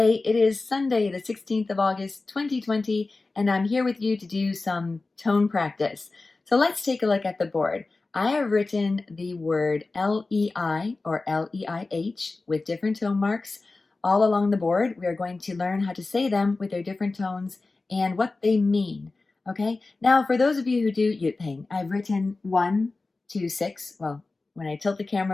it is Sunday, the 16th of August, 2020, and I'm here with you to do some tone practice. So let's take a look at the board. I have written the word L-E-I or L-E-I-H with different tone marks all along the board. We are going to learn how to say them with their different tones and what they mean. Okay, now for those of you who do Yutping, I've written 1 to 6. Well, when I tilt the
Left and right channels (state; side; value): quieter; right; 3.5 dB